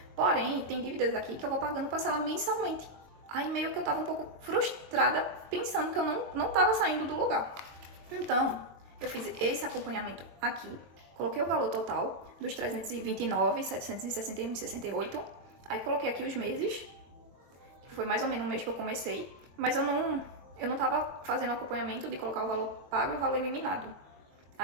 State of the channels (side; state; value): left; late; 22 ms